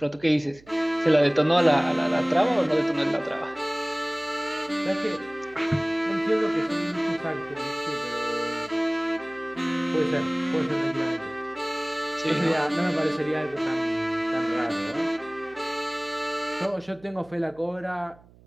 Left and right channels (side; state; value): right; noise; hum, 26 dB below the sound